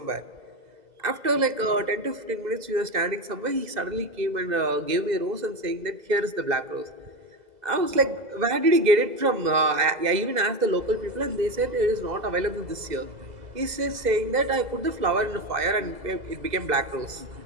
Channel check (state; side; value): late; left; 2.0 ms